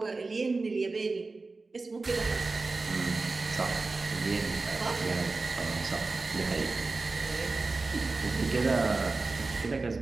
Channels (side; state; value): left; quieter; 3.7 dB